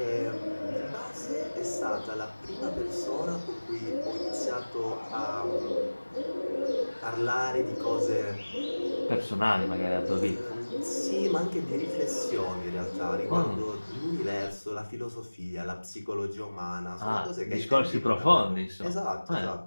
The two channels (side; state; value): both; inverted; correlation -1.00